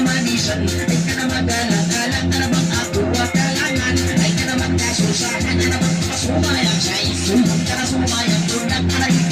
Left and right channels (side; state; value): both; identical; correlation 1.00